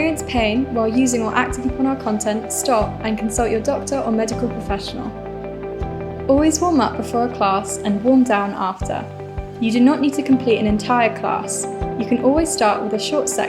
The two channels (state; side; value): identical; both; correlation 1.00